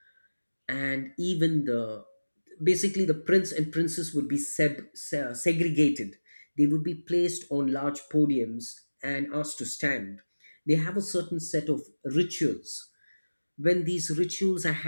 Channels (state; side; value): inverted; both; correlation -1.00